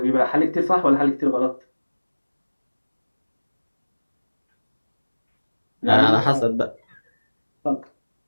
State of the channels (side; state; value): both; inverted; correlation -1.00